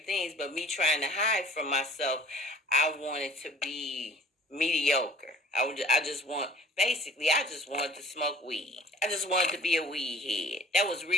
things, but me trying to hide from myself, I wanted to be mediocre. I just wanted to smoke weed. I just wanted to be a weed head. That was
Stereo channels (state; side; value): normal; both; correlation 0.49